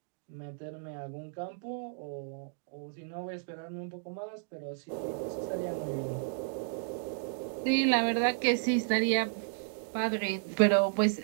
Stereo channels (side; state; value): left; silent; digital silence